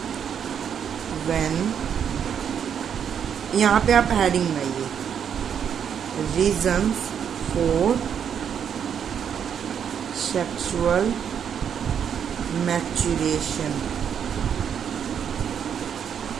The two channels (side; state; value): left; quieter; 8.1 dB